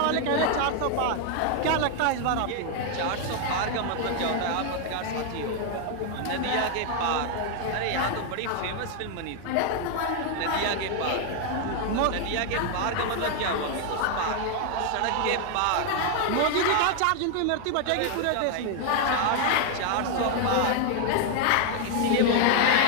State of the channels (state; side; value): different; both; correlation 0.00